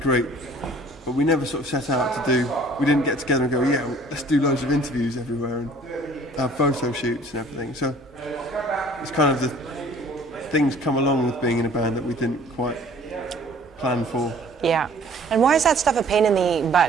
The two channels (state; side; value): normal; both; correlation 0.52